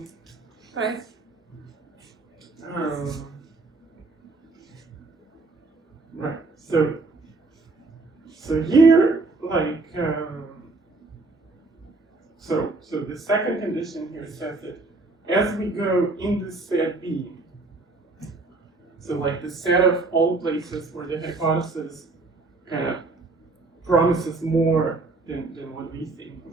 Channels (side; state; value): left; quieter; 3.5 dB